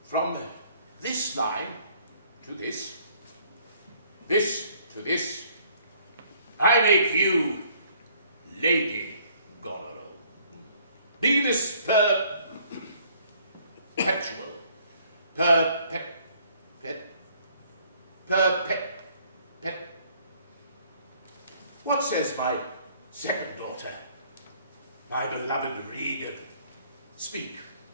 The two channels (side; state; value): both; inverted; correlation -0.61